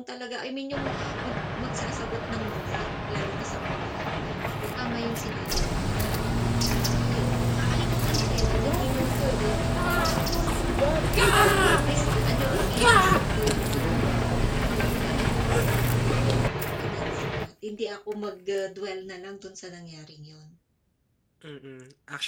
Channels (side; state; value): both; identical; correlation 1.00